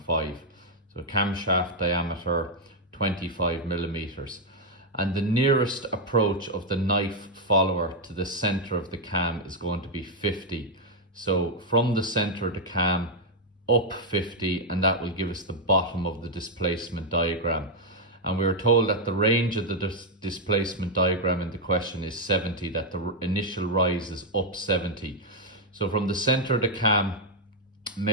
So camshaft diameter 25 millimeters. And the nearest approach of the knife follower to the center of the cam is going to be 50. So from the center of the cam up 50, and that will give us the bottom of the displacement diagram. And we were told that the range of the displacement diagram in the question is 70, that the initial rise is up 70. So from the center of the cam,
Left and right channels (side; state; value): both; normal; correlation 0.00